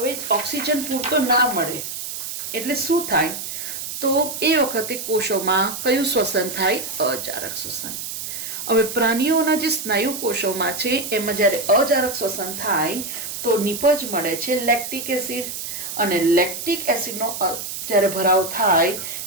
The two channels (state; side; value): noise; right; hiss, 7 dB below the sound